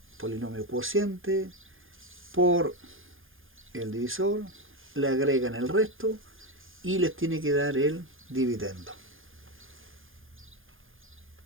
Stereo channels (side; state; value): left; late; 0.59 ms